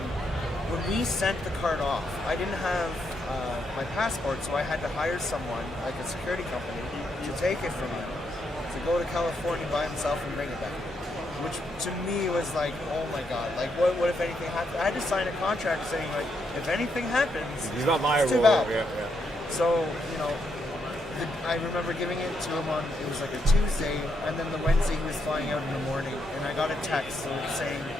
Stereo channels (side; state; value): both; normal; correlation 0.78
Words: When we sent the card off, I didn't have my passport, so I had to hire someone, like a security company, to take it from him, to go to California by himself and bring it back. Which to me was like, oh my god, like what if anything happened? I had to sign a contract saying like, if anything happens, he's not liable. It's too bad. Yeah. So, you know, I remember giving it to him on, it was like a Tuesday, and then the Wednesday he was flying out in the morning, and I got a text saying,